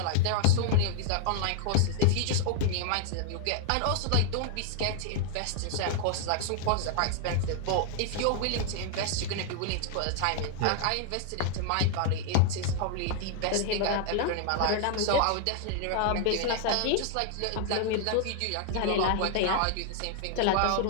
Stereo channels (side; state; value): both; different; correlation 0.00